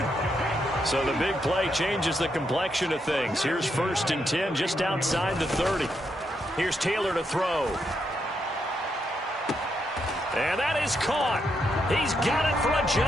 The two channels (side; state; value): both; normal; correlation 0.80